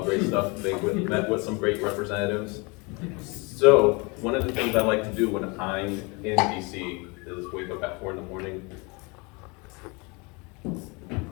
stuff. They met with some great representatives. So one of the things I like to do when I'm in DC is wake up at 4 in the morning.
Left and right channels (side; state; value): right; quieter; 28.9 dB